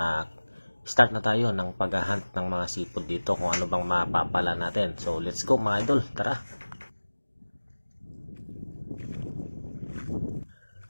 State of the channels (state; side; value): inverted; both; correlation -1.00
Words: start na tayo ng paghahunt ng mga seafood dito kung ano bang mapapala natin. So let's go mga idol, tara.